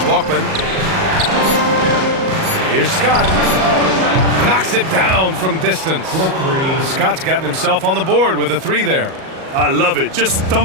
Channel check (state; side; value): late; left; 38 ms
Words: Bachman. Here's Scott. Knocks it down from distance. Scott's gotten himself on the board with a 3 there. I love it. Just